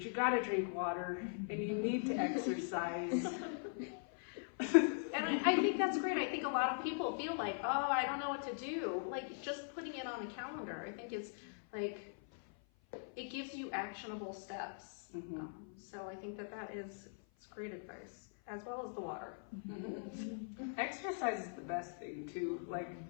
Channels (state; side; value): silent; right; 50 dB below the other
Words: you got to drink water and you need to exercise. And I think that's great. I think a lot of people feel like, oh, I don't know what to do. Like, just putting it on a calendar, I think it's like, it gives you actionable steps. Mm-hmm. So I think it's great advice, as well as the water. Mm-hmm. Exercise is the best thing too. Like,